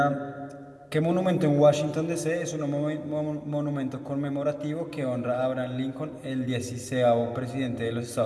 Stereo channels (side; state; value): both; identical; correlation 1.00